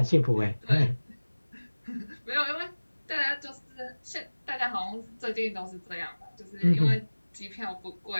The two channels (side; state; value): both; inverted; correlation -1.00